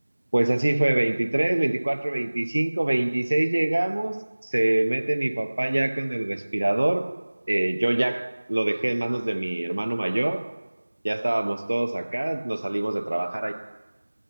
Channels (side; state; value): both; inverted; correlation -1.00